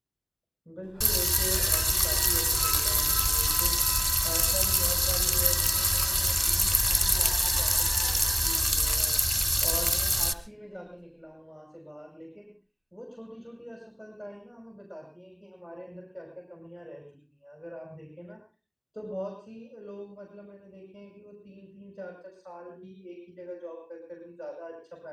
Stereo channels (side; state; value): both; identical; correlation 1.00